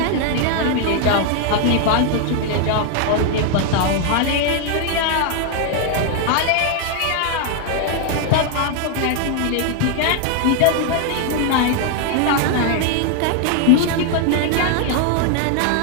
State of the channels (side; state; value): both; different; correlation 0.00